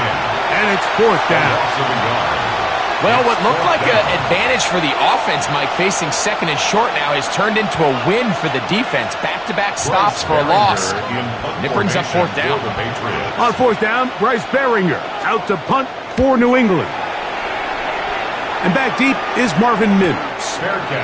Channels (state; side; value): identical; both; correlation 1.00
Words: and it's fourth down. Well, what looked like an advantage for the offense, Mike, facing second and short now, has turned into a win for the defense. Back-to-back stops for a loss. And it brings up fourth down. On fourth down, Bryce Behringer out to punt for New England. And back deep is Marvin Mims.